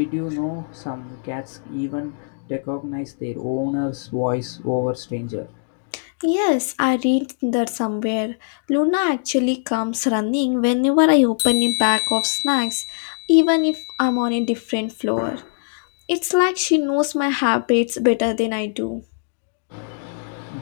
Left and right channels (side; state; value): right; silent; digital silence